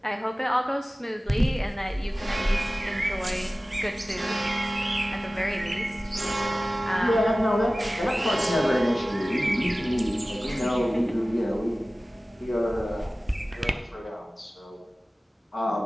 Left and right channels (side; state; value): both; normal; correlation 0.97